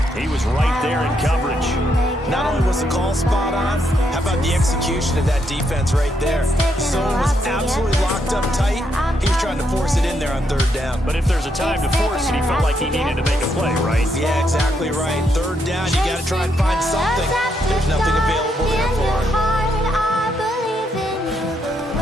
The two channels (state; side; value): normal; both; correlation 0.77